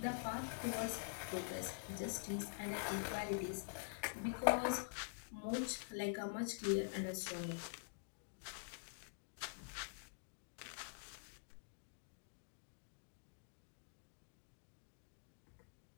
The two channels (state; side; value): silent; right; digital silence